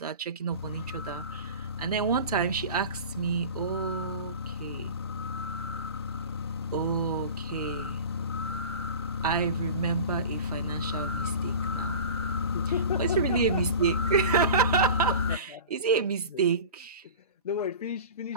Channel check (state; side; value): inverted; both; correlation -0.35